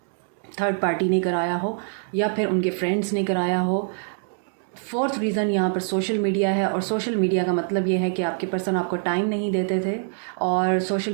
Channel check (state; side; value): silent; left; 62 dB below the other